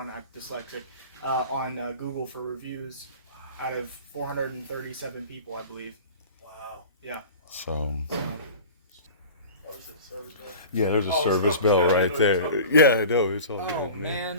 I'm dyslexic on Google for reviews out of 437 people, I believe. Wow. Yeah. So. What was it? Service bell? Yeah, there's a Oh, service it's bell not- right there. Yeah, I know. It's all Oh good,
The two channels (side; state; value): both; inverted; correlation -0.38